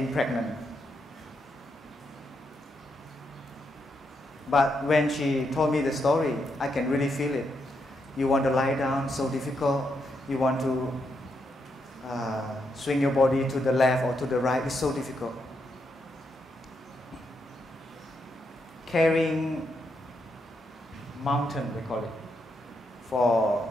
pregnant. But when she told me the story, I can really feel it. You want to lie down, so difficult. You want to swing your body to the left or to the right, it's so difficult. Carrying mountain, we call it, for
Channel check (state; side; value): normal; both; correlation 0.80